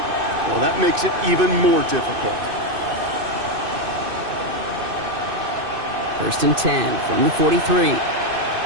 well, that makes it even more difficult. First and 10 from the 43.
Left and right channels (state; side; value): late; left; 2.6 ms